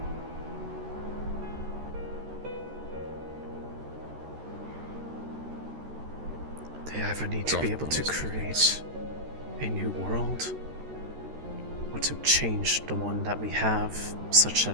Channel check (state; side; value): late; left; 13 ms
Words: They either need to be able to create a new world, or to change the one that we have such that